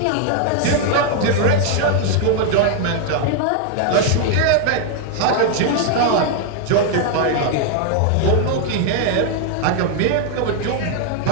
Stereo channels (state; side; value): different; both; correlation 0.00